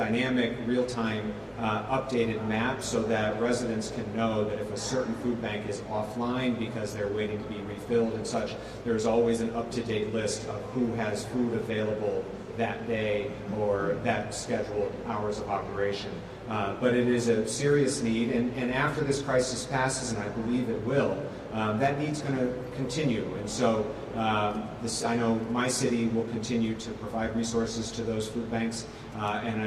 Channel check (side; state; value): both; identical; correlation 1.00